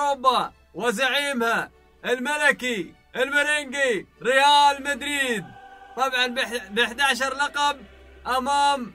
وزعيمها الملكي المرنجي ريال مدريد، طبعا ب 11 لقب امام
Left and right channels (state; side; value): identical; both; correlation 1.00